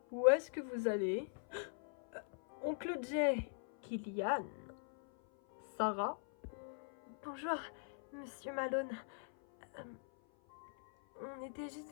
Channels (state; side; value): silent; right; 50 dB below the other